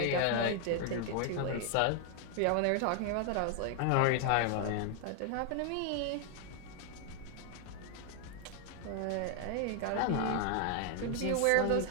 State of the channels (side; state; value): both; different; correlation 0.01